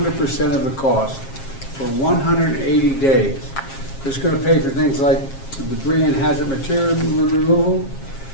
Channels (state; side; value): late; right; 7.4 ms